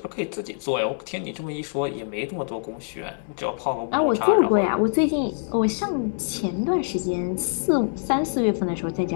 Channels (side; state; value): right; silent; digital silence